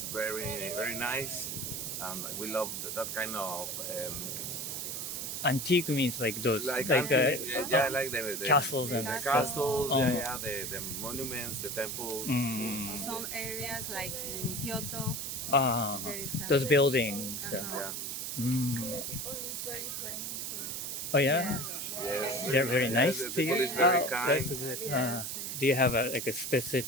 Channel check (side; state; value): right; noise; hiss, 4 dB below the sound